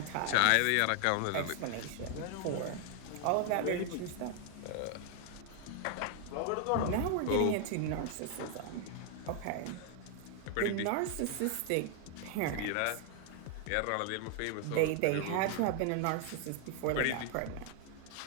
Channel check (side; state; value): both; different; correlation 0.00